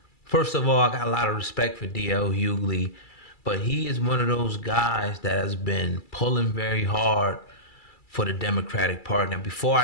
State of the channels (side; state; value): right; late; 2.3 ms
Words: First of all, I got a lot of respect for D.L. Hughley, but he is one of those guys that has been pulling very hard for the Democratic Party. Now, before